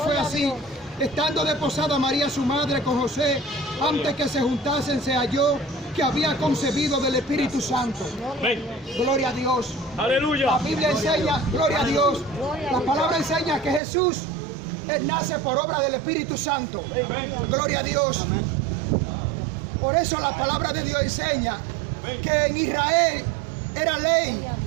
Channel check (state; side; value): drops out; left; at 13.8 s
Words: así. Estando desposada María su madre con José, antes que se juntasen, se halló que había concebido del Espíritu Santo. Gloria a Dios. Aleluya. La Biblia enseña, gloria a Dios. La palabra enseña que Jesús Él nace por obra del Espíritu Santo. Gloria a Dios. Por eso la palabra de Dios enseña que en Israel era ley